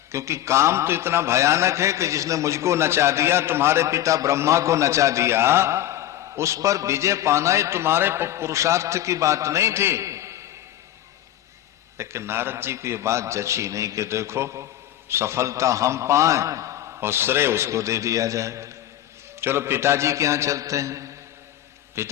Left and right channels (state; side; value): quieter; right; 12.9 dB